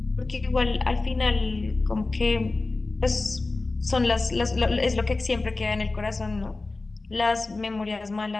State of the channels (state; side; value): quieter; right; 3.4 dB